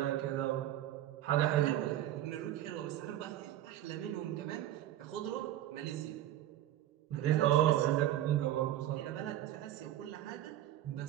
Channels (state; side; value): quieter; left; 12.9 dB